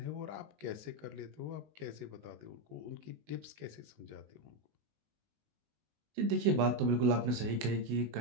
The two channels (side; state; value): left; late; 20 ms